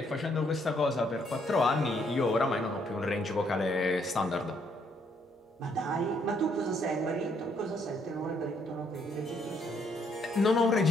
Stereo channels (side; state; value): both; normal; correlation 0.70